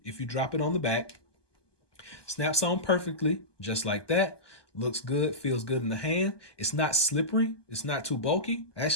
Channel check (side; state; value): right; late; 1.2 ms